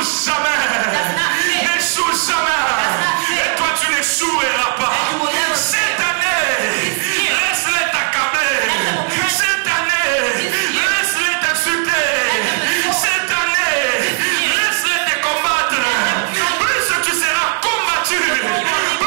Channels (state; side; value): quieter; left; 38.0 dB